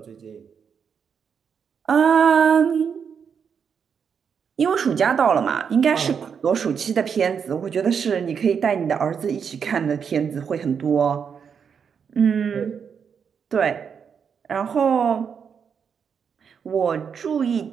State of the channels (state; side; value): quieter; left; 6.9 dB